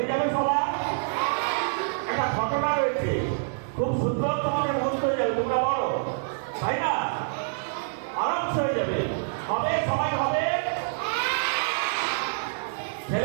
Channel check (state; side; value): silent; left; digital silence